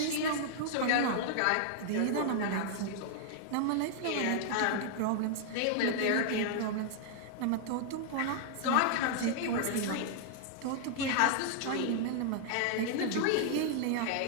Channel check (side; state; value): both; different; correlation 0.00